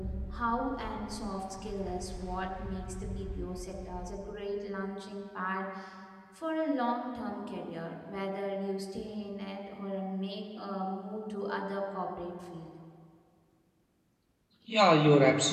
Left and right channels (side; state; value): both; identical; correlation 1.00